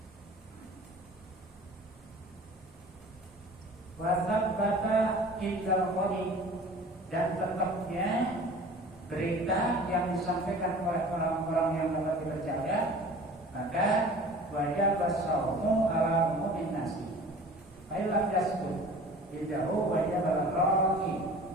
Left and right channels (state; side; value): normal; both; correlation 0.43